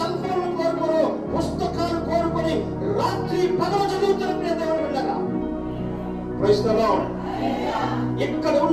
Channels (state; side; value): identical; both; correlation 1.00